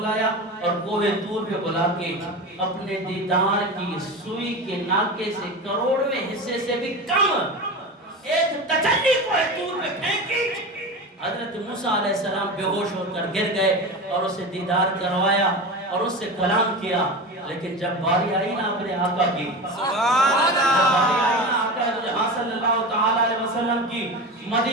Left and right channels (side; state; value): both; normal; correlation 0.27